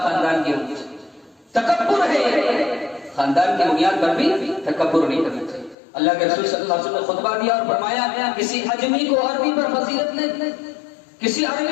خاندان کی ہوگی، تکبر ہے. خاندان کی بنیاد پر بھی تکبر نہیں کرنا چاہیے. اللہ کے رسول صلی اللہ علیہ وسلم نے خطبہ دیا اور فرمایا کسی اجمی کو عربی پر فضیلت نہیں، کسی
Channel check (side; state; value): right; drops out; at 5.8 s